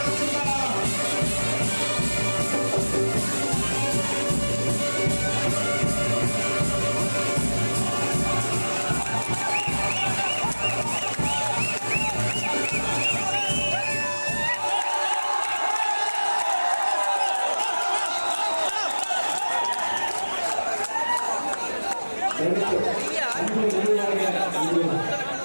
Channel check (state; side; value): inverted; both; correlation -1.00